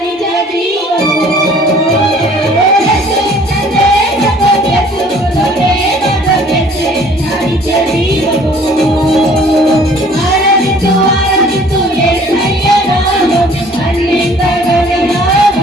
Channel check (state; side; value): normal; both; correlation 0.54